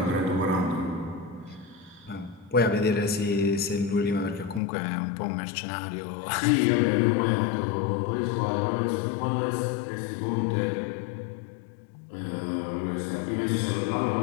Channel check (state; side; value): drops out; right; at 4.6 s